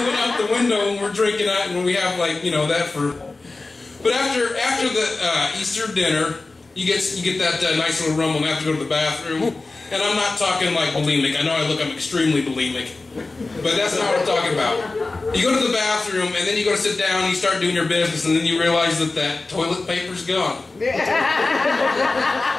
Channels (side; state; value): right; quieter; 3.4 dB